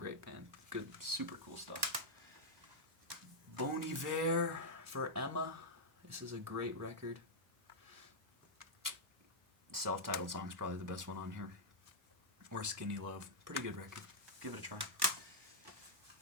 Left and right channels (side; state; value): both; normal; correlation -0.06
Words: band. Good, super cool stuff. Bon Iver for Emma. This is a great record. Self-titled song's probably the best one on here. Or Skinny Love. Pretty good record. Give it a try.